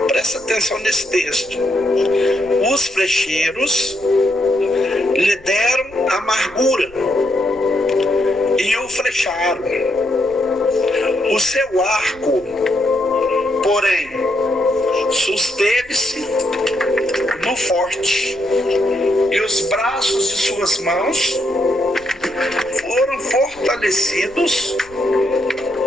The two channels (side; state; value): left; noise; rumble, 24 dB below the sound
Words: presta atenção nesse texto. Os flecheiros lhe deram amargura e o flecharam. O seu arco, porém, susteve-se no forte, e os braços de suas mãos foram fortalecidos